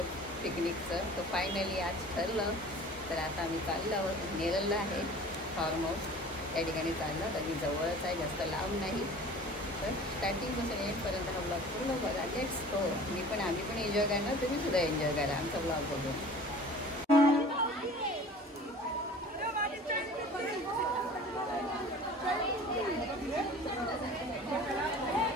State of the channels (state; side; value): normal; both; correlation 0.43